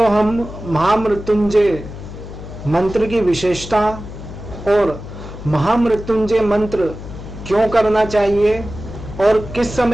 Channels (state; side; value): noise; left; hum, 12 dB below the sound